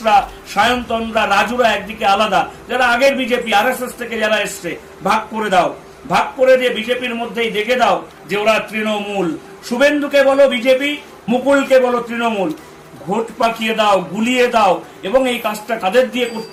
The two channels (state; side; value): identical; both; correlation 1.00